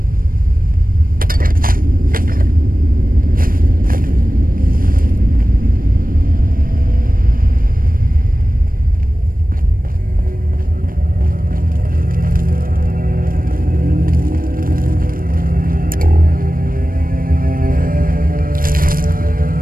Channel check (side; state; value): left; late; 0.41 ms